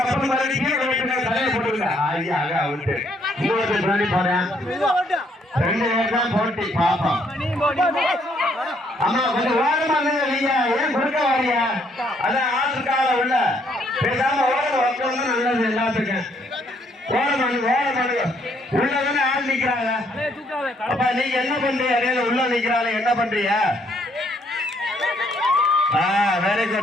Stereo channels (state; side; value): normal; both; correlation 0.69